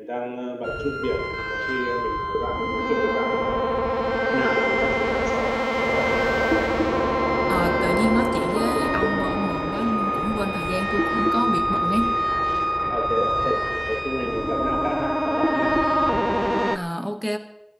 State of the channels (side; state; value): both; identical; correlation 1.00